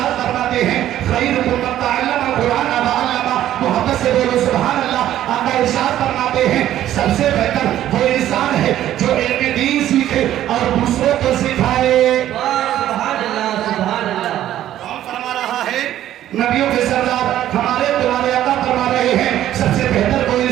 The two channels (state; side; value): quieter; left; 12.4 dB